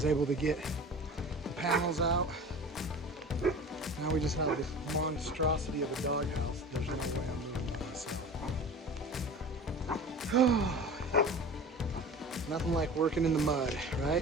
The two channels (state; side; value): normal; both; correlation 0.36